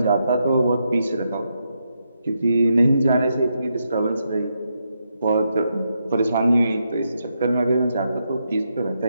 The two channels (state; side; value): inverted; both; correlation -0.82